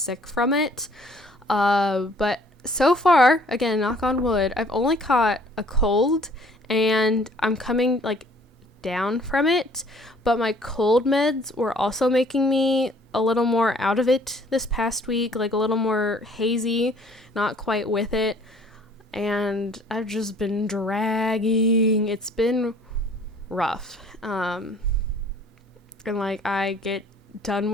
from it, but so far, again, knock on wood, I've only caught a cold, and I'm coming like down from it, but my cold meds were also making me a little more out of it this past week, like a little more hazy, not quite with it, and I've just been dragging. It's been rough, and like I get done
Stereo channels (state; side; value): normal; both; correlation 0.57